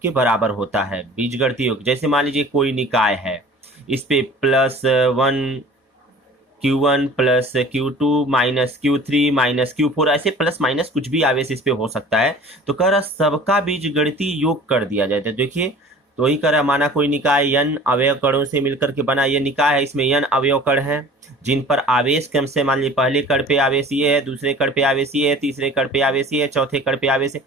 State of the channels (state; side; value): normal; both; correlation 0.45